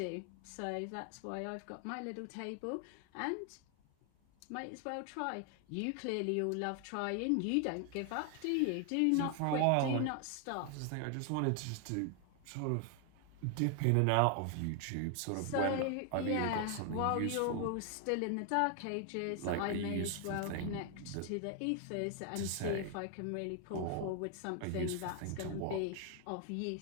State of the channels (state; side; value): different; both; correlation 0.00